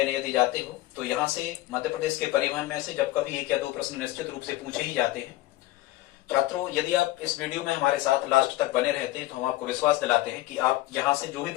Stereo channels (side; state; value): right; quieter; 17.3 dB